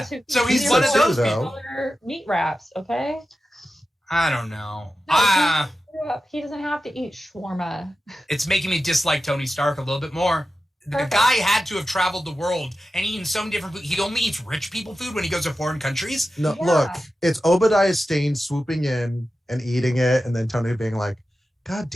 who so he's one of those people. Meat wraps, okay? I don't know. No, he doesn't have to eat shawarma. It's making me dislike Tony Stark a little bit more. Perfect. The guy had to have traveled the world and eaten so many different food. He only eats rich people food when he goes to foreign countries. No, look, it's Obadiah Stane swooping in and eating it, and then Tony being like, God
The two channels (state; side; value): normal; both; correlation 0.92